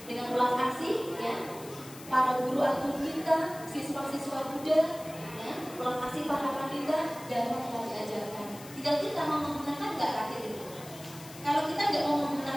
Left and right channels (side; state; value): left; noise; hiss, 17 dB below the sound